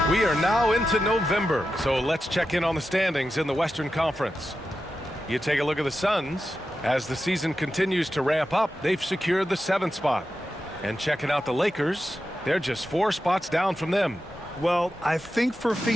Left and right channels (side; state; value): both; normal; correlation 0.90